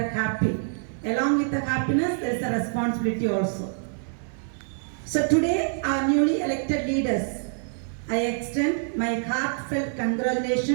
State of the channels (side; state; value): left; silent; digital silence